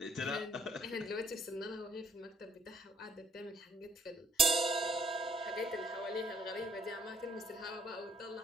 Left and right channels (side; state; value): both; normal; correlation 0.66